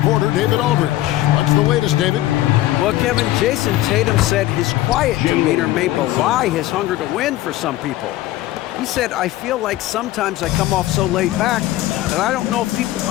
David Aldridge. What's the latest, David? Well, Kevin, Jason Tatum said his quiet demeanor may belie his hunger to win for some people. He said, I feel like sometimes I come off so laid back that I don't know if people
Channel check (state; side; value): quieter; right; 15.5 dB